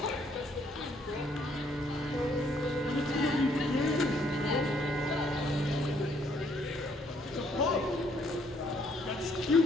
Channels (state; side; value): normal; both; correlation 0.67